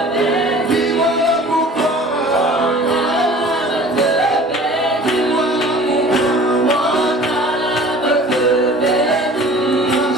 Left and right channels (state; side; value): normal; both; correlation 0.45